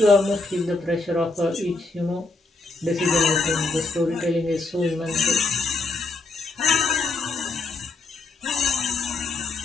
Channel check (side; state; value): right; quieter; 3.5 dB